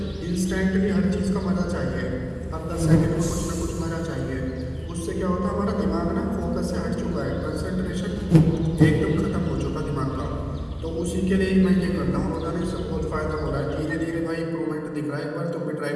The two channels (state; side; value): identical; both; correlation 1.00